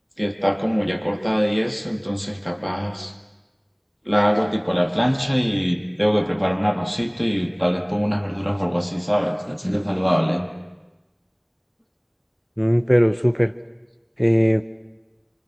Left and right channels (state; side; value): identical; both; correlation 1.00